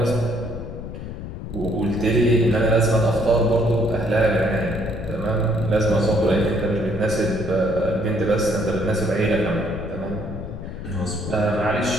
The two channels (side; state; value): left; noise; rumble, 9 dB below the sound